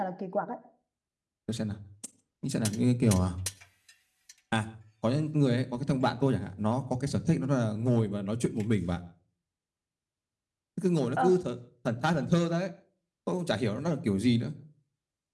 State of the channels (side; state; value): both; identical; correlation 1.00